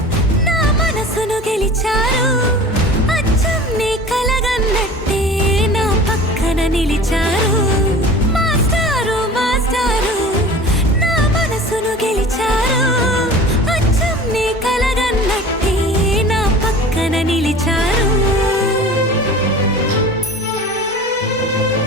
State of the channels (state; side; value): normal; both; correlation 0.40